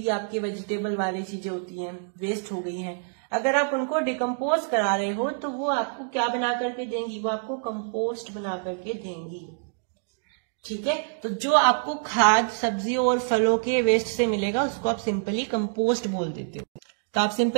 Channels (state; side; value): silent; left; digital silence